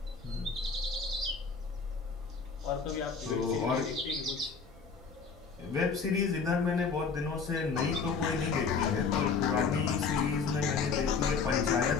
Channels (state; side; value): quieter; right; 5.1 dB